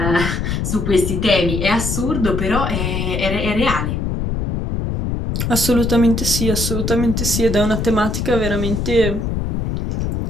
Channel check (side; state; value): left; noise; rumble, 2 dB below the sound